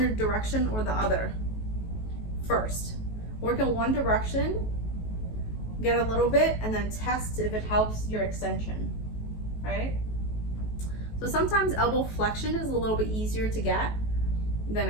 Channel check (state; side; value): late; right; 19 ms